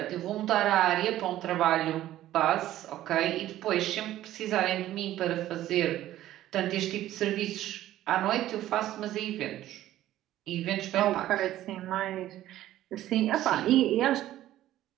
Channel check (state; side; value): quieter; left; 13.8 dB